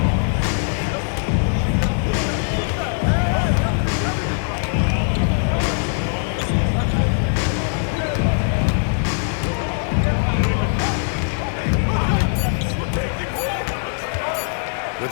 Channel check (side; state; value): right; silent; 61 dB below the other